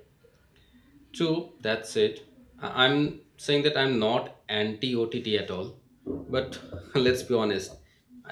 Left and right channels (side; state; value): both; identical; correlation 1.00